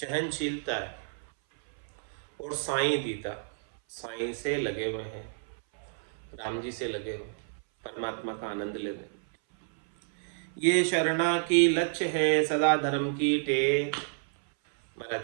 है, और साई दीता, साई से लगे हुए हैं, राम जी से लगे हुए, परमात्मा का आनंद ले रहे। ये शरणा की लक्ष्य है सदा धर्म की टेक।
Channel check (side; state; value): left; silent; 58 dB below the other